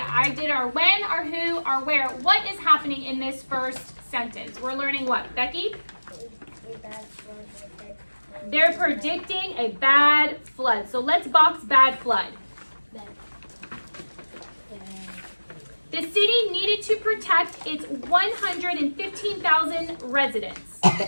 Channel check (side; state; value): both; inverted; correlation -1.00